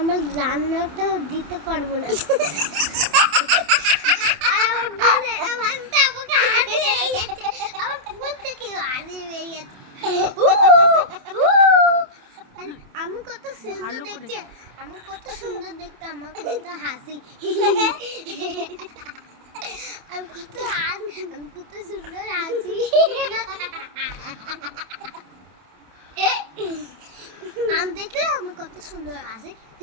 আমার রান্নাটা দিতে পারবো না। আর আমার বোনে ভাষা আমাকে হাসি হয়ে যাচ্ছে, আমার ফোন থেকে হাসি হয়ে যাচ্ছে। আমি কত সুন্দর দেখছি, আমার কত সুন্দর দেখতে, আমার কত হাসি, আমি কত সুন্দর হাসি। আমি দেখলে আমার কত সুন্দর হাসি,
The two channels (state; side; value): late; left; 27 ms